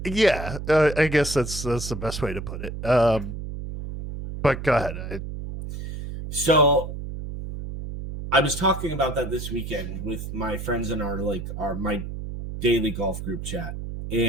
Yeah, I guess that's the best way to put it. But go ahead. So I was talking about that this weekend with my friends in my daily golf group chat,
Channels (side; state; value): right; noise; hum, 7 dB below the sound